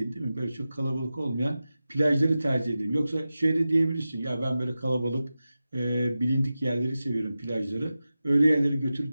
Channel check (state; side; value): inverted; both; correlation -0.94